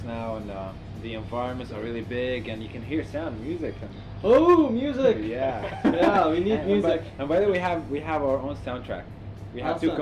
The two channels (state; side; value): identical; both; correlation 1.00